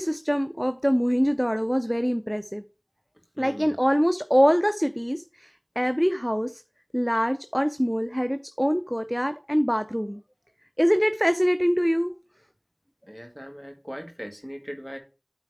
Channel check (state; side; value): identical; both; correlation 1.00